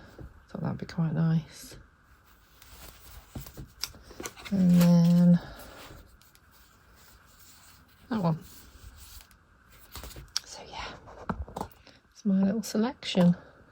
Thought that'd be quite nice. And then that one. So yeah, it's my little selection.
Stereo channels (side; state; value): both; identical; correlation 1.00